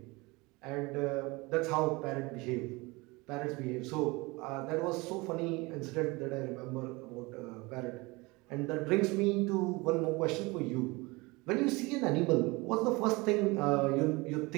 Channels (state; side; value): quieter; left; 24.3 dB